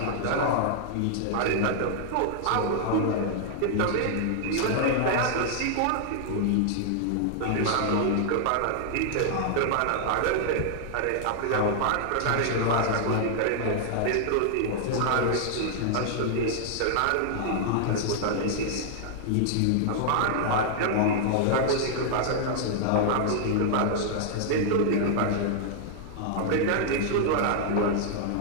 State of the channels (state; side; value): different; both; correlation -0.01